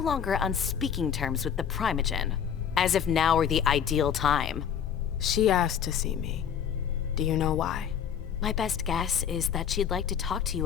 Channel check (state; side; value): quieter; right; 8.4 dB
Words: on speaking terms with the Primogen. As if now were the ideal time. She asked to see me. Do you know why? My best guess is that she'd like to talk to